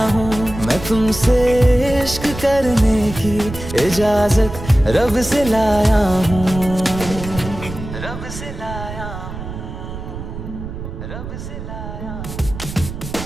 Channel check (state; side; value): noise; right; rumble, 9 dB below the sound